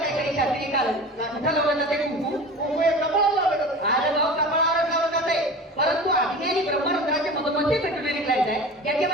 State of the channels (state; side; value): normal; both; correlation 0.35